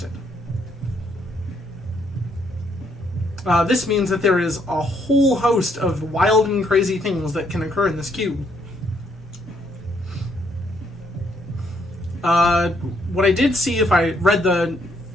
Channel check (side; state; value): both; normal; correlation 0.71